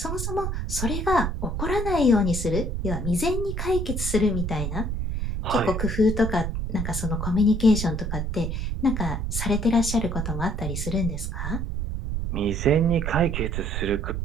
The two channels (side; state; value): right; noise; rumble, 2 dB below the sound